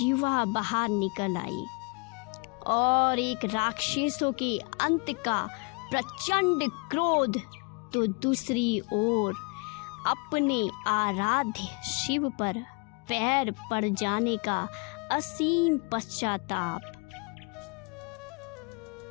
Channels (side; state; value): right; quieter; 32.6 dB